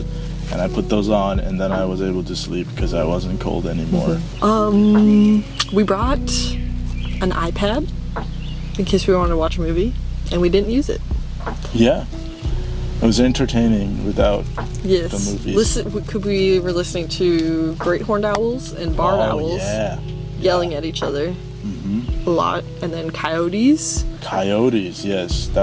and I put those on, and then I was able to sleep because I wasn't cold anymore. We brought an iPad in case we wanted to watch a movie, and we didn't use it. Yeah, it was entertaining without Yes. the movies. We were listening to great horned owls and barn owls Yeah, yelling at each other a lot, and then coyotes. coyotes. Yes,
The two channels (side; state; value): both; identical; correlation 1.00